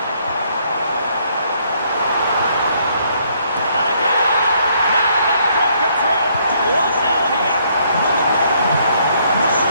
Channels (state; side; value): inverted; both; correlation -0.68